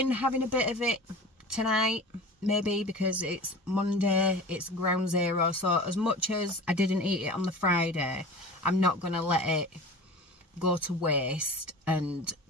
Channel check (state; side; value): normal; both; correlation 0.36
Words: having a bit of it tonight, maybe, because it's Monday, it's ground zero. So as much as I didn't eat it on the Friday, I'm not going to let it go to waste and